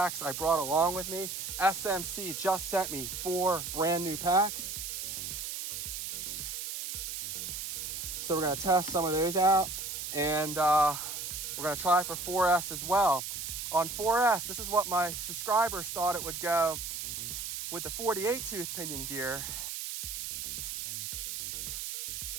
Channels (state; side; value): noise; right; hiss, 5 dB below the sound